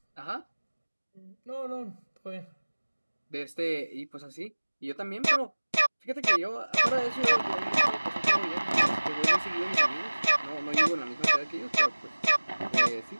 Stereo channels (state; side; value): inverted; both; correlation -1.00